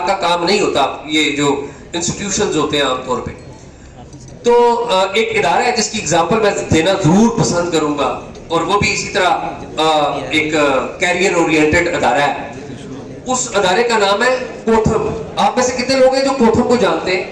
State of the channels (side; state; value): both; identical; correlation 1.00